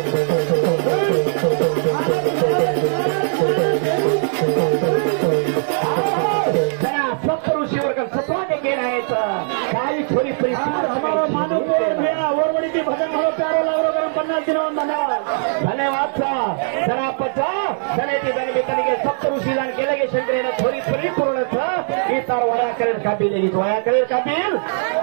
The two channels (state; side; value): silent; left; 66 dB below the other